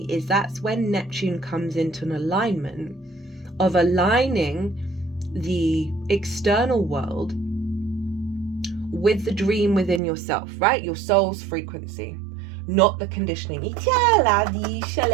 is that's when Neptune comes into an alignment of aligning the external world with the dream within yourself, right? Your soul's frequency, not the conditioning.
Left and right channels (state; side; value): drops out; left; at 10.0 s